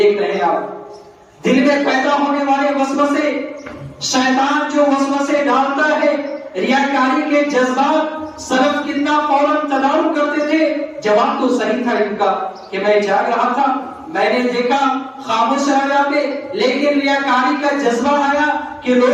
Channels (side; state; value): both; identical; correlation 1.00